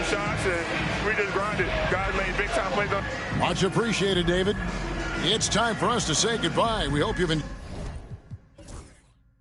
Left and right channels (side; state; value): both; identical; correlation 1.00